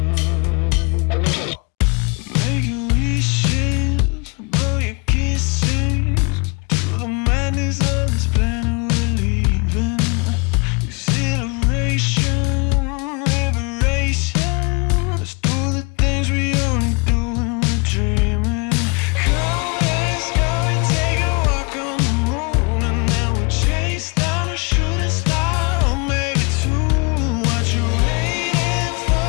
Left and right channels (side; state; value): right; quieter; 31.5 dB